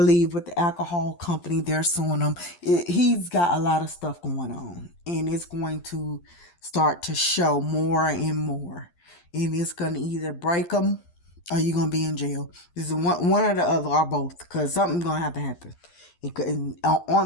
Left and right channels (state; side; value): late; right; 11 ms